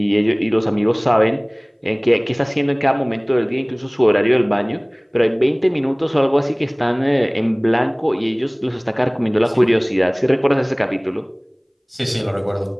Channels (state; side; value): identical; both; correlation 1.00